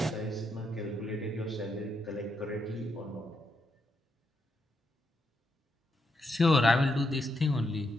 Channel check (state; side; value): normal; both; correlation 0.80